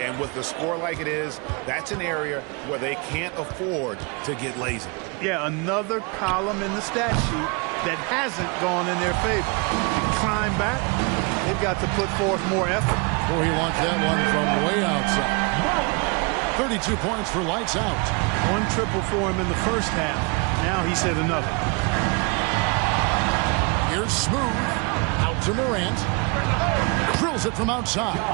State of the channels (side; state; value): left; quieter; 30.9 dB